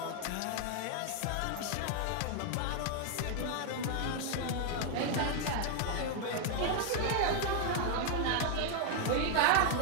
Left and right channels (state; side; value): different; both; correlation 0.00